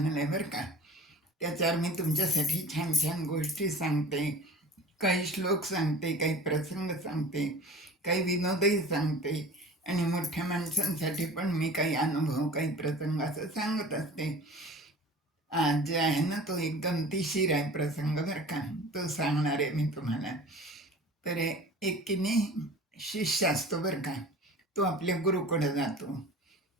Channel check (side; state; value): both; normal; correlation 0.41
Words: आहे बरं का. त्याच्यावर मी तुमच्यासाठी छान छान गोष्टी सांगते, काही श्लोक सांगते, काही प्रसंग सांगते, काही विनोदही सांगते आणि मोठ्या माणसांसाठी पण मी काही अनुभव, काही प्रसंग असं सांगत असते. आज जे आहे ना तो एक गमतीशीर आहे प्रसंग बरं का, तो सांगणार आहे मी तुम्हाला. तर एक की नाही शिष्य असतो बरं का, तो आपल्या गुरुकडे जातो.